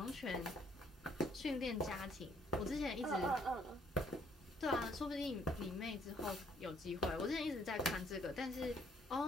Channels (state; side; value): normal; both; correlation 0.65